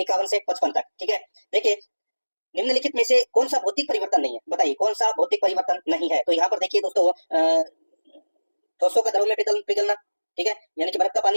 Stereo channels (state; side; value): inverted; both; correlation -1.00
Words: से 55 तक। ठीक है, देखिए निम्नलिखित में से कौन सा भौतिक परिवर्तन नहीं है? बताइए कौन सा भौतिक परिवर्तन नहीं है? तो यहाँ पर देखिए दोस्तों ठोसों का द्रव में पिघलना, ठीक है, यानी कि बर्फ का